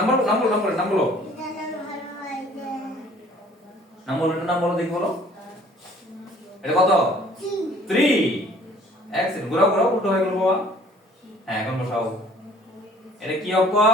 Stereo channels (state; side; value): normal; both; correlation 0.55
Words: বলো। এটার নাম হলো এই যে নাম বলো দেখি বলো। এটা কত? 3 3। এক্সেলেন্ট। ঘোরাও, উল্টো হয়ে গেল বাবা। হ্যাঁ এখন বসাও। এটা কি